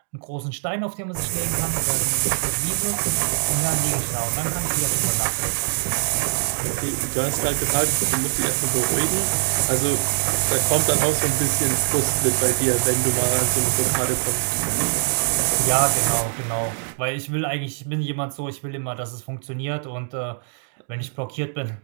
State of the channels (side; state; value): left; silent; digital silence